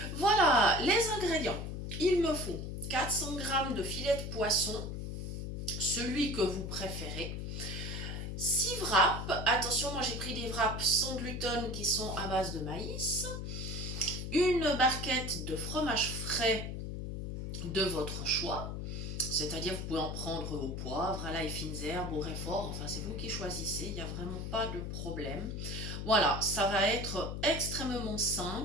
Voilà, les ingrédients. Il me faut 400 g de filet de poisson, celui que vous préférez. 6 wraps, attention, moi j'ai pris des wraps sans gluten qui sont à base de maïs. Une barquette de fromage frais de votre choix, c'est-à-dire vous pouvez en prendre au poivre, à l'ail, fines herbes, au réfort, enfin c'est vous qui choisissez, il n'y a vraiment pas de problème. Voilà, ça va être extrêmement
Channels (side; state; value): left; noise; hum, 5 dB below the sound